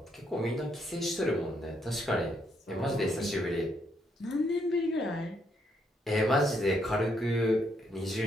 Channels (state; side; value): normal; both; correlation 0.74